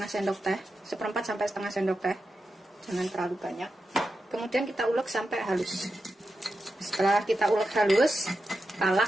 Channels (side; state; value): both; normal; correlation 0.89